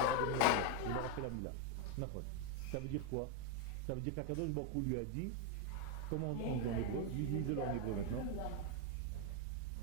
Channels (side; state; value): both; different; correlation 0.01